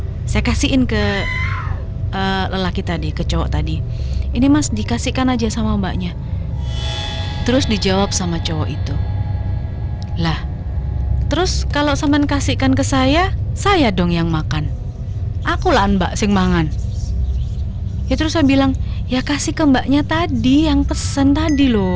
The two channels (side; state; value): both; identical; correlation 1.00